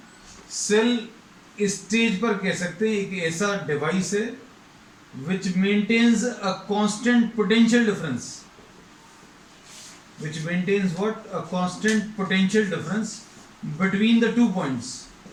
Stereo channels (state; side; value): identical; both; correlation 1.00